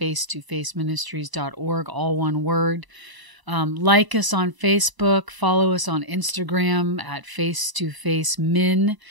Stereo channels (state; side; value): late; left; 1.0 ms